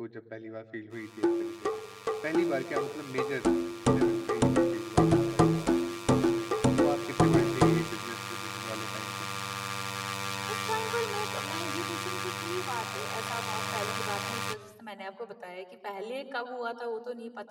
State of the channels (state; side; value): identical; both; correlation 1.00